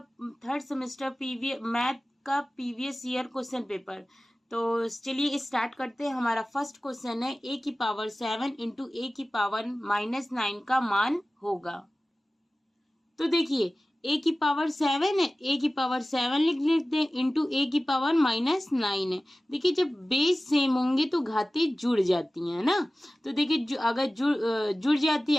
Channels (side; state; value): both; normal; correlation 0.96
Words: थर्ड सेमेस्टर मैथ का प्रीवियस ईयर क्वेश्चन पेपर। तो चलिए स्टार्ट करते हैं। हमारा फर्स्ट क्वेश्चन है a की पावर 7 इंटू a की पावर -9 का मान होगा। तो देखिए a की पावर 7 है, a की पावर 7 लिख लेते हैं इंटू a की पावर -9 है। देखिए जब बेस सेम होंगे तो घातें जुड़ जाती हैं ना। तो देखिए अगर जुड़ जाती है,